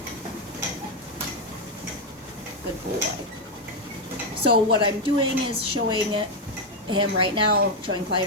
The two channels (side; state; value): both; normal; correlation 0.04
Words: Good boy. So what I'm doing is showing him right now, showing